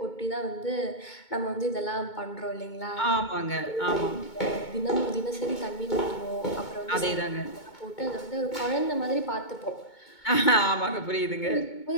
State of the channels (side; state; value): right; late; 2.2 ms